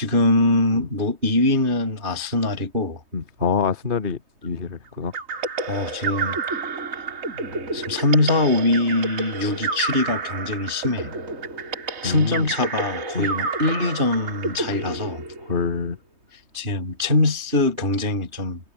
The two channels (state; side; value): late; left; 3.2 ms